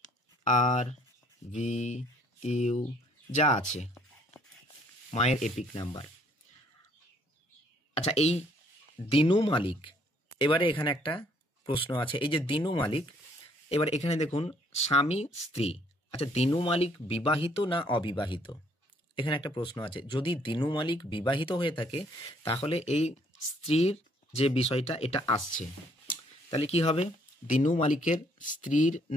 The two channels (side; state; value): both; normal; correlation 0.64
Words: আর ভি ইউ যা আছে মায়ের এপিক নাম্বার। আচ্ছা এই দিনু মালিক, এবারে এখানে একটা প্রশ্ন আছে, এই যে দিনু মালিক, এবার এখানে দেখুন স্বামী স্ত্রী, আচ্ছা দিনু মালিক বিবাহিত না অবিবাহিত, এখানে একটা প্রশ্ন আছে। যদি দিনু মালিক বিবাহিত হয়ে থাকে তাহলে এই স্ত্রীর যে বিষয়টা এটা আসছে, তাহলে কি হবে? দিনু মালিকের স্ত্রীর